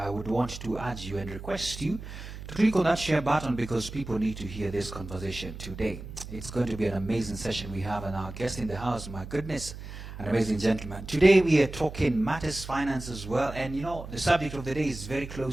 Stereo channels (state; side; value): noise; right; hum, 11 dB below the sound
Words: would want to urge you and request you to click on that share button because people need to hear this conversation today. It's going to be an amazing session we have, and our guest in the house, my goodness, an amazing gentleman. Today we are talking matters finance as well, and you know, the subject of the day is very